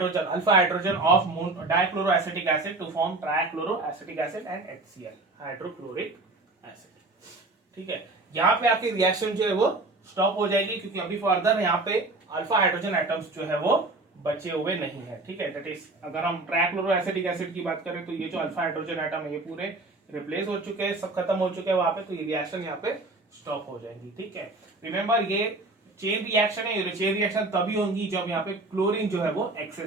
alpha hydrogen of dichloroacetic acid to form trichloroacetic acid and HCl hydrochloric acid. ठीक है, यहाँ पे आपकी रिएक्शन जो है वो स्टॉप हो जाएगी, क्योंकि अभी फर्दर यहाँ पे अल्फा हाइड्रोजन एटम्स जो है वो बचे हुए नहीं है। ठीक है, दैट इज अगर हम ट्राइक्लोरोएसिटिक एसिड की बात करें तो ये जो अल्फा हाइड्रोजन एटम है ये पूरे रिप्लेस हो चुके हैं, सब खत्म हो चुके हैं वहां पे, तो ये रिएक्शन यहाँ पे स्टॉप हो जाएगी। ठीक है, रिमेंबर ये चेन रिएक्शन है, ये चेन रिएक्शन तभी होगी जब यहाँ पे क्लोरीन जो है वो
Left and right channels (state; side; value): quieter; left; 3.0 dB